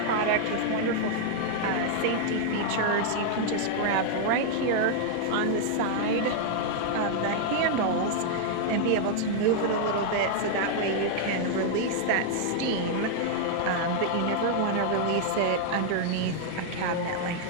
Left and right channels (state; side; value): different; both; correlation -0.01